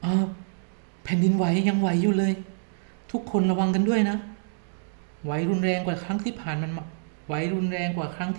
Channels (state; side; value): silent; left; digital silence